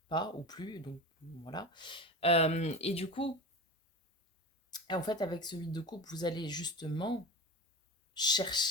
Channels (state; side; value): normal; both; correlation 0.28